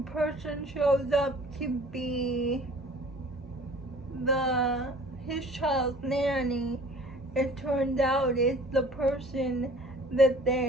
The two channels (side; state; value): both; normal; correlation 0.49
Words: person shows up to be his child's nanny, it turns out it's the person that